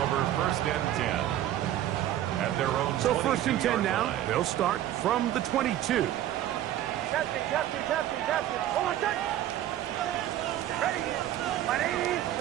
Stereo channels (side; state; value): left; quieter; 12.6 dB